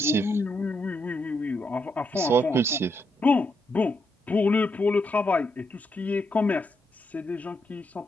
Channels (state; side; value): normal; both; correlation 0.80